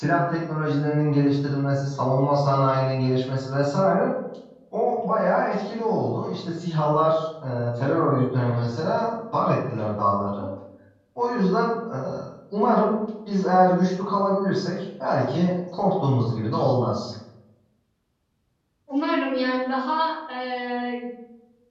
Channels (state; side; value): identical; both; correlation 1.00